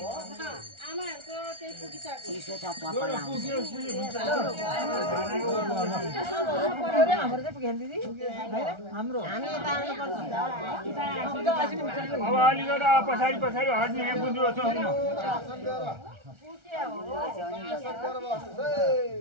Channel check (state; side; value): late; left; 1.4 ms